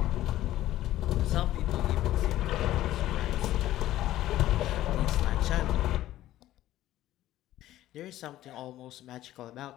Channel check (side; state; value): right; quieter; 14.3 dB